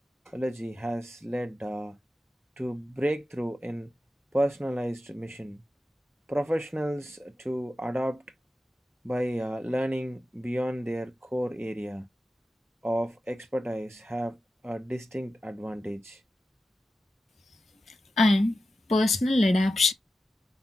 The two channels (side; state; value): both; normal; correlation 0.92